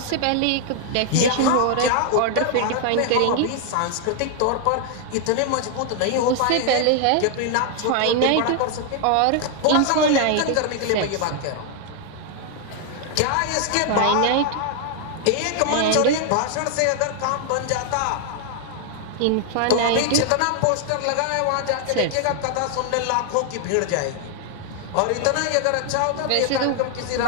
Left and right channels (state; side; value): different; both; correlation 0.00